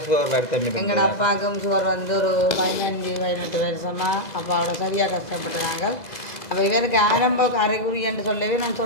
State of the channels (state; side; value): late; right; 2.0 ms